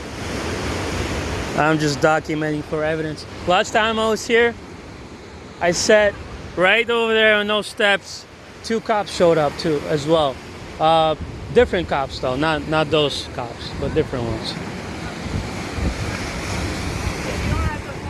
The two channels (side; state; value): both; identical; correlation 1.00